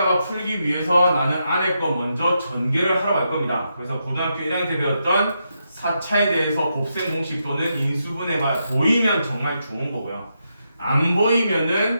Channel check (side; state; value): both; inverted; correlation -0.83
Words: 풀기 위해서 나는 안에 거 먼저 전개를 하러 갈 겁니다. 그래서 고등학교 1학년 때 배웠던 4차에 대해서 곱셈 공식 또는 인수분해가 보이면 정말 좋은 거고요. 안 보이면은